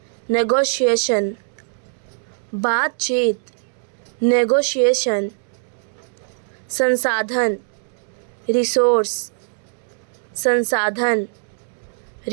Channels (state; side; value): silent; left; digital silence